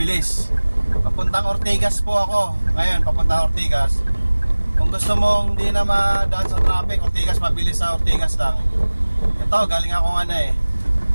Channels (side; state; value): both; inverted; correlation -1.00